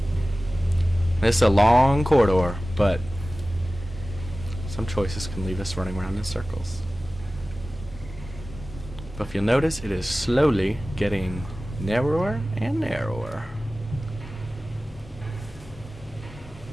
This is a long corridor, but some choices can leave us running around in circles. But if you'll notice, it is slowly getting narrower and narrower.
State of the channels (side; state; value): both; normal; correlation 0.97